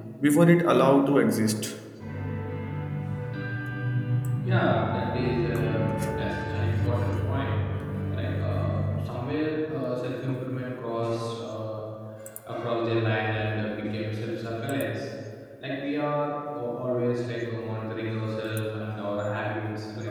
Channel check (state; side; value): identical; both; correlation 1.00